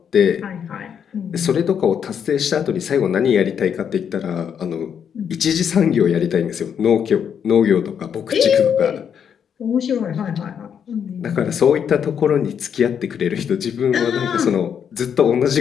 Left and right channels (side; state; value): right; quieter; 7.9 dB